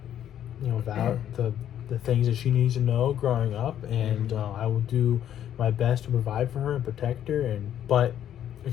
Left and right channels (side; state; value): right; quieter; 10.5 dB